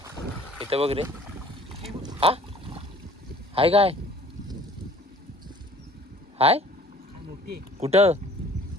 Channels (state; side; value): normal; both; correlation 0.52